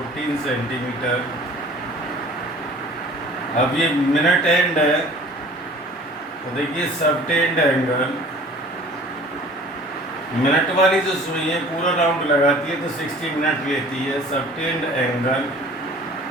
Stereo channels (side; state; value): both; normal; correlation 0.47